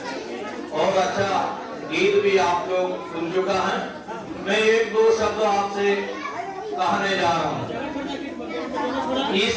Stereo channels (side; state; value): both; identical; correlation 1.00